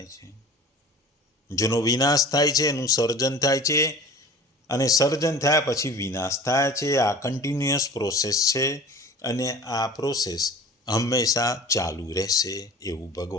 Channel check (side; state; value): both; normal; correlation 0.40